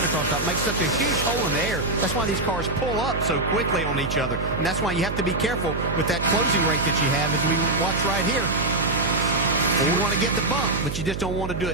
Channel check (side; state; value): right; noise; hum, 6 dB below the sound